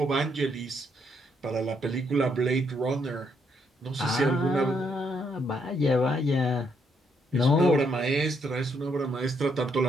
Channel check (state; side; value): normal; both; correlation 0.74